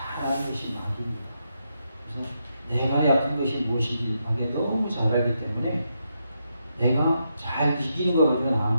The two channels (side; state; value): both; inverted; correlation -0.82